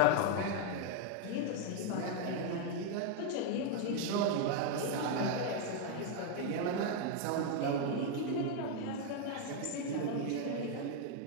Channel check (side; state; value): both; different; correlation 0.00